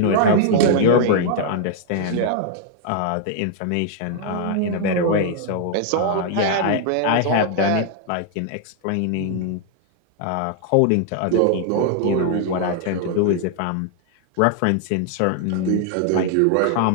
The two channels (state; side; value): different; both; correlation 0.00